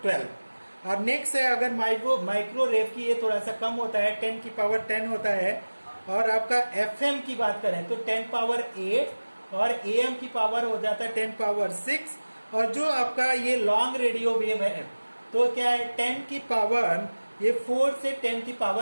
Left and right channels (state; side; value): inverted; both; correlation -1.00